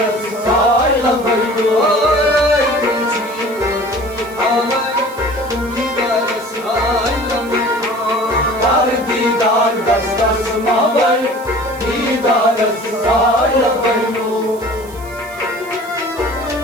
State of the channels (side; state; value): right; noise; hiss, 21 dB below the sound